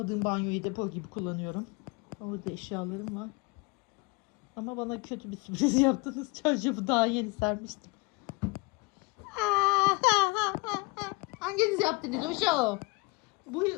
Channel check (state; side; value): quieter; right; 26.4 dB